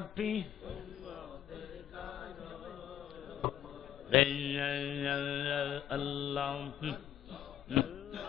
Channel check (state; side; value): quieter; right; 10.9 dB